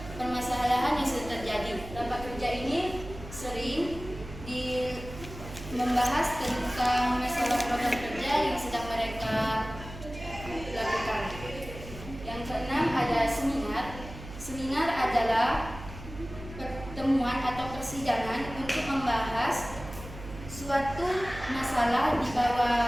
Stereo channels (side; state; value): right; noise; hum, 13 dB below the sound